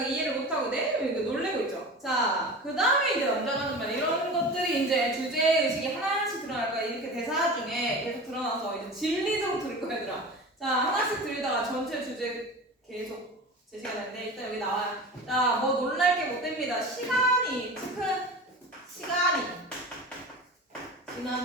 이해를 못하고 이거 놀래고 있죠. 자, 그 다음에 이제 남자가 하는 말, 이런 것들이 이제 주제의식이 하나씩 드러날 거야. 이렇게 대사 중에 계속 드러나서 이제 진리적으로 들을 거야, 얘들아. 자, 하나씩 들다가 전체 주제 계속 제시가 되는데, 일단 여기 나와요. 자, 뭐 놀랄 게 못 됩니다. 시간이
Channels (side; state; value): both; normal; correlation 0.33